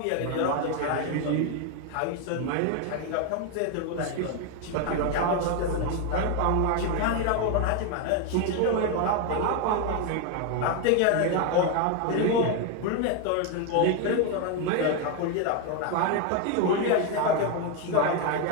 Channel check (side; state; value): both; different; correlation 0.01